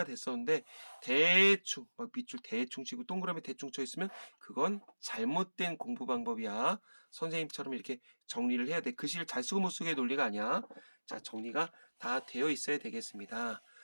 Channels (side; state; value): both; inverted; correlation -1.00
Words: 됐었는데 대충 막 밑줄 대충 치고 동그라미 대충 쳐 있으면 그건 잘못된 공부 방법이야. 선생님처럼 이렇게 정리를 해야 돼. 글씨를 잘 쓰고 못 쓰고의 논리가 아니야. 자, 정리가 다 되어 있어야 되겠습니다.